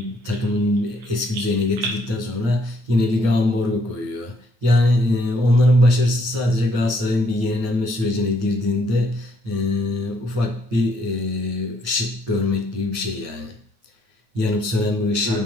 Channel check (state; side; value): late; left; 9.3 ms